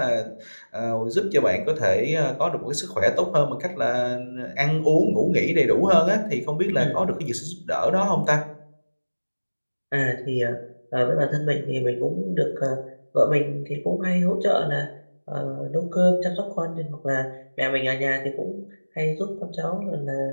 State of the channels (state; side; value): inverted; both; correlation -1.00